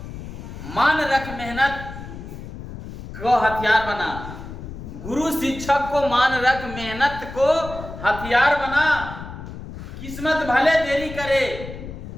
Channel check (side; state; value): left; noise; rumble, 11 dB below the sound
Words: मान रख, मेहनत को हथियार बना। गुरु शिक्षक को मान रख, मेहनत को हथियार बना। किस्मत भले देरी करे